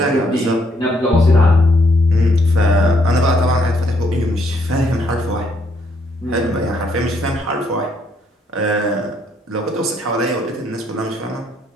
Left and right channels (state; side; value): normal; both; correlation 0.71